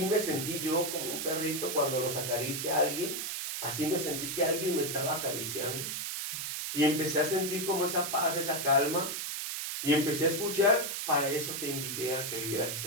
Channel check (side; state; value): right; noise; hiss, 3 dB below the sound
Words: me sentí yo, como un perrito cuando los acaricia a alguien. Así me sentí que alguien me estaba acariciando. Y empecé a sentir como esa paz, esa calma. Y empecé a escuchar, para eso te invité a que vivieras